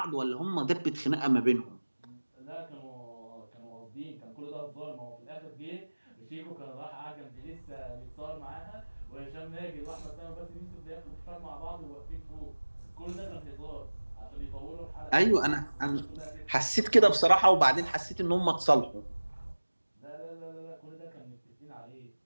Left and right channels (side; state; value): both; inverted; correlation -1.00